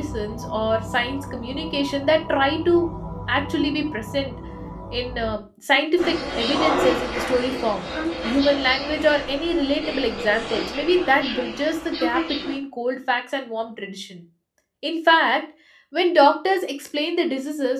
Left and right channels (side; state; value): both; identical; correlation 1.00